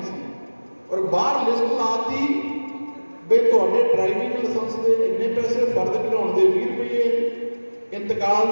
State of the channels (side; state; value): both; inverted; correlation -1.00